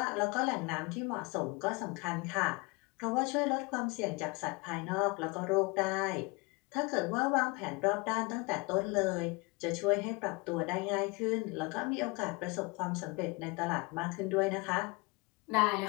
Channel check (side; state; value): right; quieter; 26.5 dB